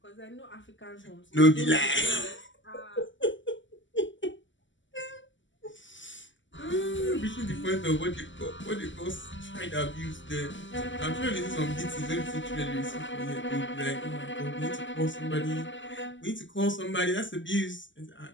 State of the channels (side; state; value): right; late; 0.54 ms